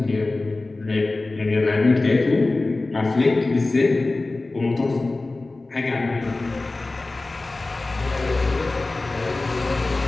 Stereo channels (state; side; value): quieter; right; 3.2 dB